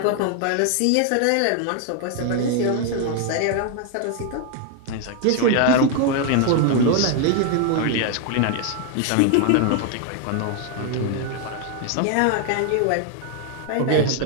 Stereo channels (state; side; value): different; both; correlation 0.00